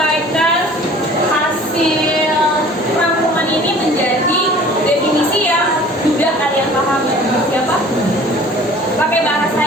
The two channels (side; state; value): both; normal; correlation 0.48